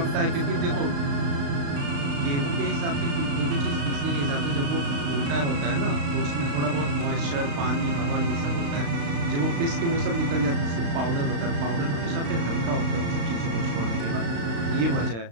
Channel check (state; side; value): late; left; 35 ms